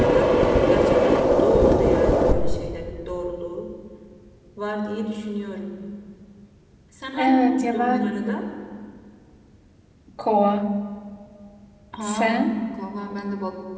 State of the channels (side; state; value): both; identical; correlation 1.00